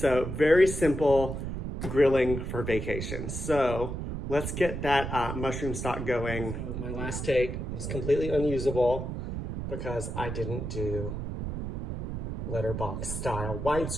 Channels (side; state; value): right; noise; rumble, 5 dB below the sound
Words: very simple grilling for vacation. So let's get that mushroom stock going. My last take was completely unusable because I didn't do letterbox style